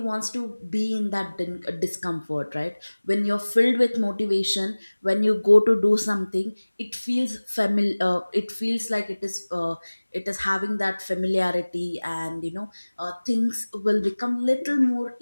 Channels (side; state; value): both; inverted; correlation -1.00